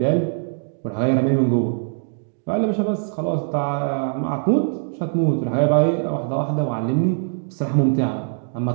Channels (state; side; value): silent; left; digital silence